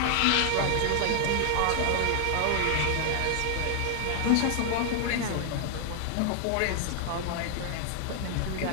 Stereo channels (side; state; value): both; different; correlation 0.00